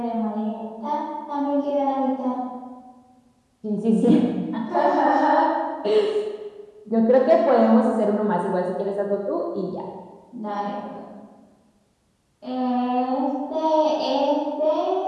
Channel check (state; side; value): identical; both; correlation 1.00